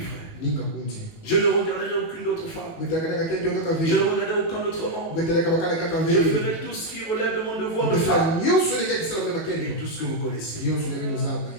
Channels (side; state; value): right; late; 18 ms